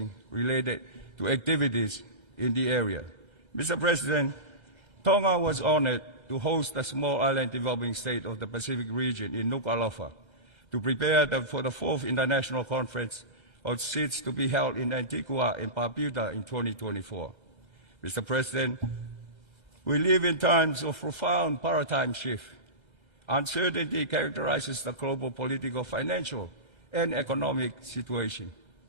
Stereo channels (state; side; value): late; right; 1.3 ms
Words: related to activities in the area. Mr. President, Tonga was honored to host the Small Island Developing State of the Pacific region in Nuku'alofa to prepare for the 4th International Conference of SIDS to be held in Antigua and Barbuda in 2024. Mr. President, we live in times of profound paradigm shift. Uncertainty characterizes the global political, financial, and economic situation.